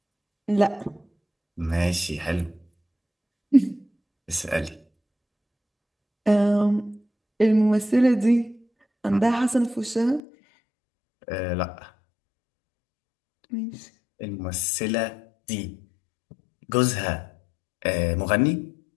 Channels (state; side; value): drops out; right; at 10.2 s